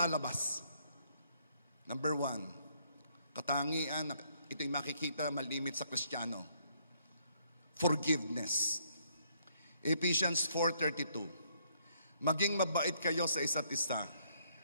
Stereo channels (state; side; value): inverted; both; correlation -0.70